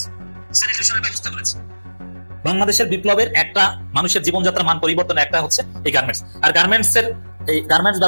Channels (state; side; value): inverted; both; correlation -1.00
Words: স্যানিটেশনের ব্যবস্থা করেছে। বাংলাদেশের বিপ্লবের একটা মানুষের জীবনযাত্রার মান পরিবর্তন একটা হচ্ছে এই গার্মেন্টস। আর এই গার্মেন্টস